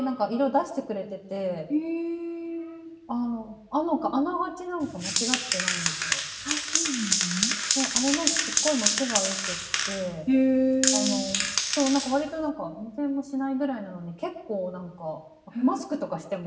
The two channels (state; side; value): identical; both; correlation 1.00